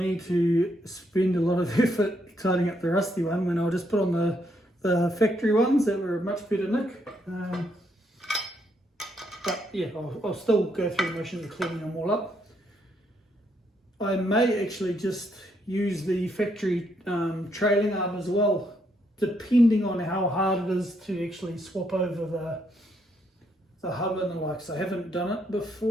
to spend a lot of effort tidying up the rusty one when I'll just put on the factory ones that were much better nick. But yeah, I'll still go through the motions of cleaning them all up. I may actually just use the factory trailing arm as well, depending on how hard it is to actually swap over the hub and the likes. I haven't done it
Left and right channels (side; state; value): both; normal; correlation 0.75